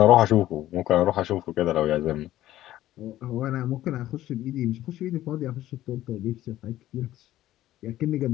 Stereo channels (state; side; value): quieter; right; 14.2 dB